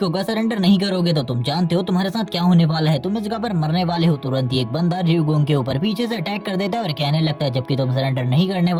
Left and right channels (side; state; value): both; identical; correlation 1.00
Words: होगा। सरेंडर नहीं करोगे तो तुम जानते हो तुम्हारे साथ क्या होने वाला है, तुम इस जगह पर मरने वाले हो। तुरंत ही एक बंदा र्यूगोंग के ऊपर पीछे से अटैक कर देता है और कहने लगता है जबकि तुम सरेंडर नहीं करने